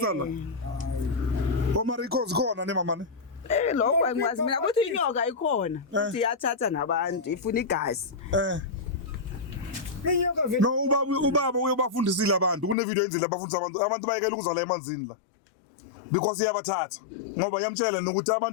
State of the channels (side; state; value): right; drops out; at 12.8 s